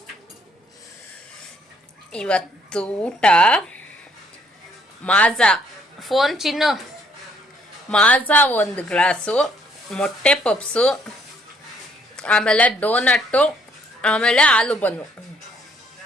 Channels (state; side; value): normal; both; correlation 0.66